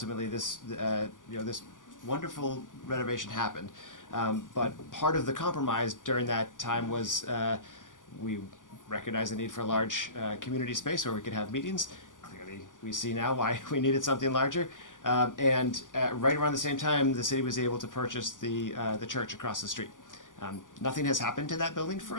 this this wonderful renovation happened. But part of the compromise during that time was we recognized the need for a large community space where we could have meetings. Clearly, we see now why we needed something larger. And right around the same time, the city was able to purchase the church across the street. Nothing has happened to that building for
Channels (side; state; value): right; late; 0.88 ms